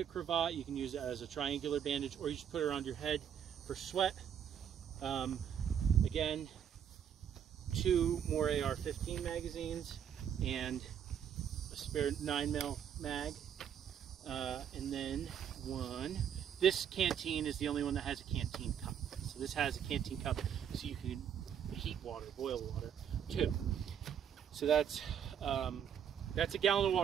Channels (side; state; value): left; quieter; 8.8 dB